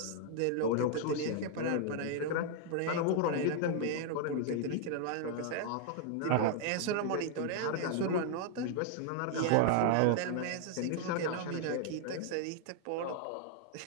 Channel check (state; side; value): different; both; correlation 0.00